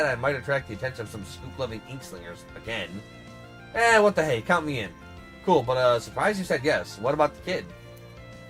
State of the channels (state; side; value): identical; both; correlation 1.00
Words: I might attract the attention of some scoop-loving inkslingers again. What the hey, count me in. Cool, but surprised you said yes. What about the kid?